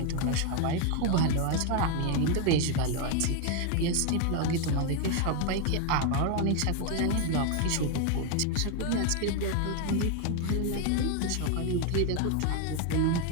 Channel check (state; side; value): different; both; correlation 0.01